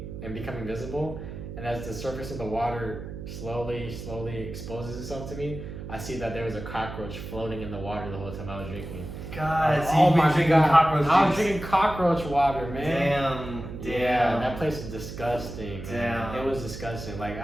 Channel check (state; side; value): noise; right; hum, 9 dB below the sound